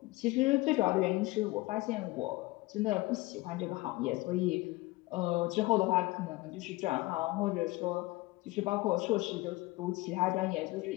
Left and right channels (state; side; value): quieter; right; 20.8 dB